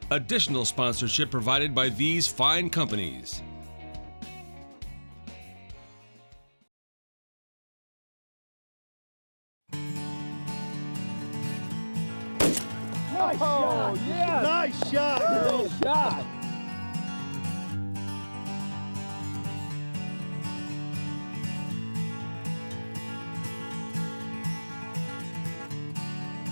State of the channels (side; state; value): both; inverted; correlation -1.00